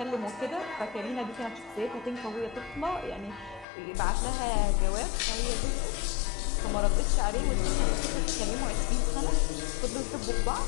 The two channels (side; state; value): right; drops out; at 3.7 s